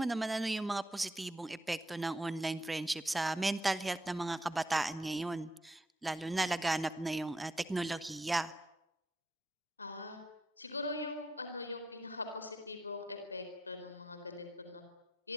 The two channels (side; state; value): both; normal; correlation 0.80